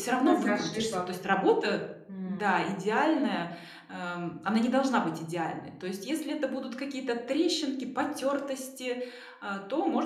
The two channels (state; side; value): identical; both; correlation 1.00